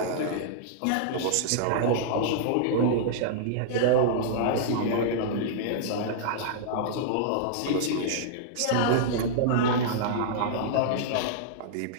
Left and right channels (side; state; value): both; different; correlation -0.02